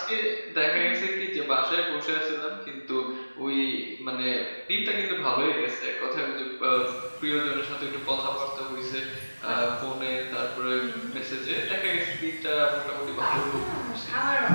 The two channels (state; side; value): inverted; both; correlation -1.00